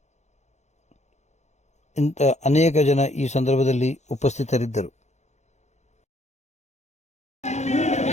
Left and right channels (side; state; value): right; late; 0.33 ms